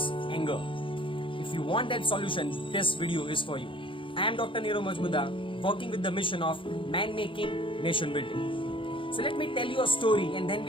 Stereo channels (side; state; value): right; late; 0.25 ms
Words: anger. If you want that solution, this video is for you. I am Dr. Nirav Majmudar, working with the mission of man making, nation building. So let me tell you a story and then